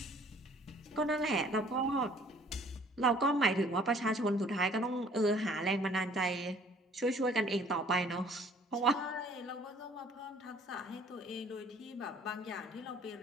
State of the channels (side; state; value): both; normal; correlation 0.55